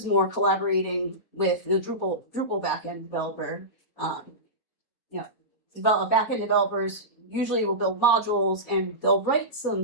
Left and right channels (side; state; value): right; late; 4.1 ms